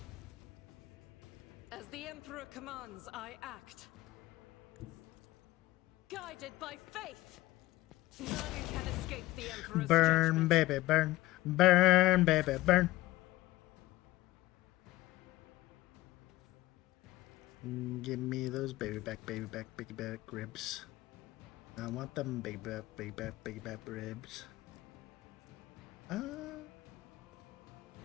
As the Emperor commands, I act. Guided by faith! None can escape the Emperor's Burn, judgment. baby, burn. Burn, baby, burn. Give me those baby back ribs. I want them baby back ribs.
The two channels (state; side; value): quieter; right; 17.8 dB